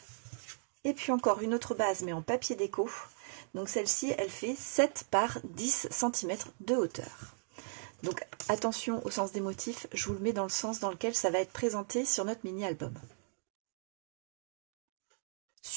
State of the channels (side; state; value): left; silent; digital silence